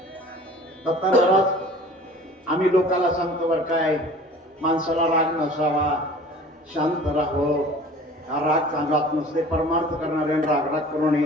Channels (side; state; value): both; normal; correlation 0.45